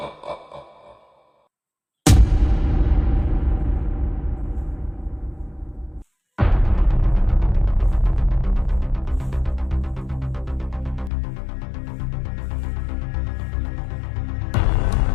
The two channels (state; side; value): drops out; right; at 11.1 s